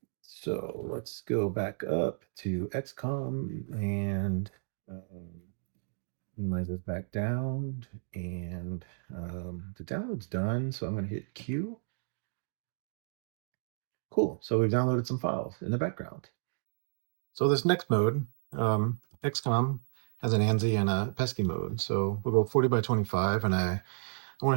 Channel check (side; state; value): left; silent; digital silence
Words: so let's go back up to XCOMM and minimize this back down. And the download's done, so I'm going to hit Q. Cool, so we've downloaded some files in the background. So this next mode, XCOMM has an ANSI and a PETSCII mode. So we'll go 40 by 25, and I want